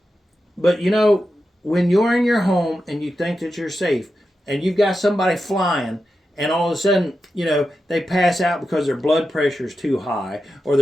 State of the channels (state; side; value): normal; both; correlation 0.90